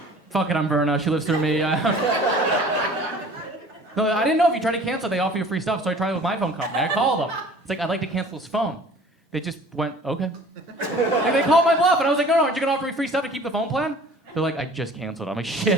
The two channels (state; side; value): normal; both; correlation 0.48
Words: fuck it, I'm Verna. She lives through me. No, I didn't know if you try to cancel, they offer you free stuff, so I tried it with my phone company. I called them. It's like, I'd like to cancel his phone. They just went, okay. Like, they called my bluff, and I was like, no, aren't you gonna offer me free stuff to keep the phone plan? They're like, I just canceled. I'm like,